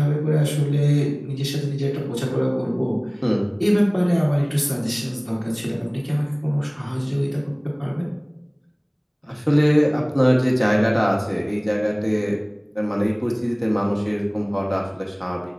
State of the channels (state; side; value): identical; both; correlation 1.00